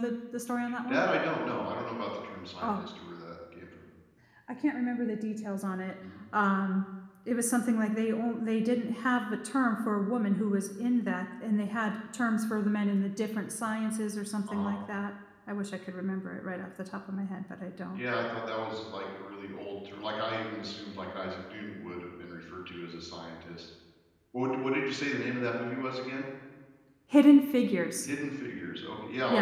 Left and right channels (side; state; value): both; identical; correlation 1.00